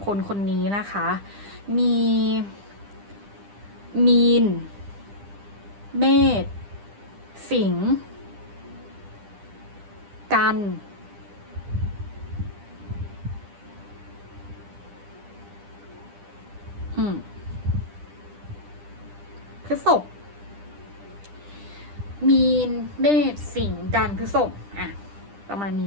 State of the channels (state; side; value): late; left; 10 ms